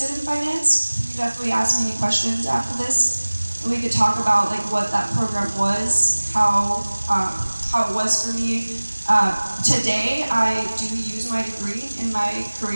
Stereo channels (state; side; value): inverted; both; correlation -1.00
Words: in finance, you definitely ask me any questions after this, and we could talk about like what that program was, how it was for me. Today, I do use my degree in my